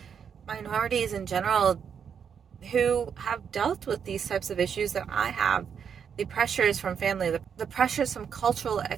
minorities in general who have dealt with these types of issues that I have. The pressures from family, the pressures from cultural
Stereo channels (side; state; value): left; quieter; 7.3 dB